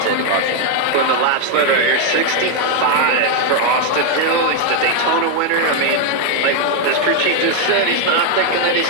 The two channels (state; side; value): different; both; correlation 0.00